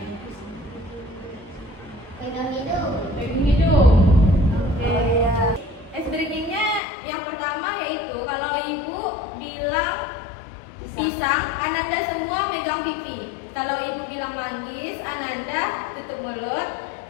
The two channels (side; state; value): right; drops out; at 6.8 s